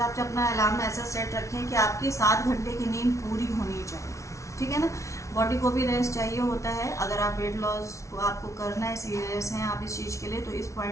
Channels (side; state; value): right; late; 0.14 ms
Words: से अपना अलार्म ऐसा सेट रखें कि आपकी 7 घंटे की नींद पूरी होनी चाहिए, ठीक है ना। बॉडी को भी रेस्ट चाहिए होता है। अगर आप वेट लॉस को आपको करना है, सीरियस हैं आप इस चीज़ के लिए, तो इस